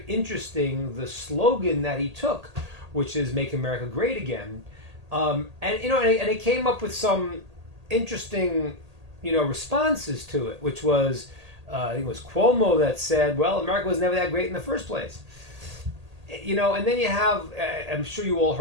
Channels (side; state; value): left; late; 1.8 ms